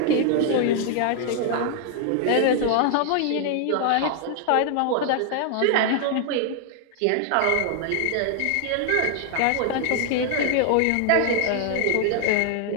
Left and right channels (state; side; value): different; both; correlation 0.00